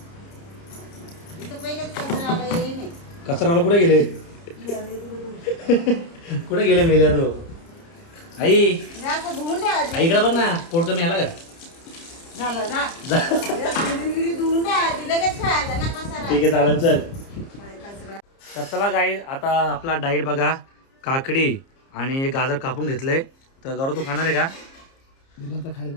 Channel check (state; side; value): late; right; 30 ms